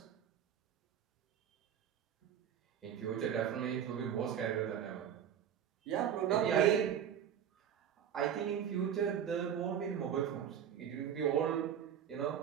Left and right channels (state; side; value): quieter; left; 9.0 dB